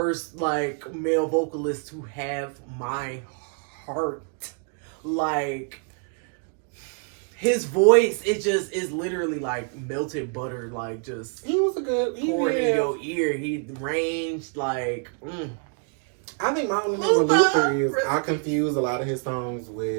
like male vocalist to have my heart. Like his voice, it just is literally like melted butter, like just He was a good. pouring in your ear. He ranged like. I think my only thing with Luther is Luther! I confuse a lot of his songs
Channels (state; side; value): quieter; left; 39.1 dB